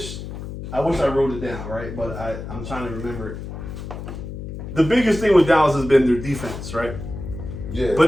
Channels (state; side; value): noise; left; hum, 9 dB below the sound